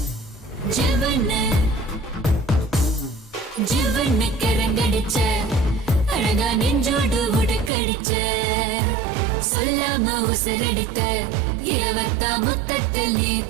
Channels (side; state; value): left; drops out; at 7.7 s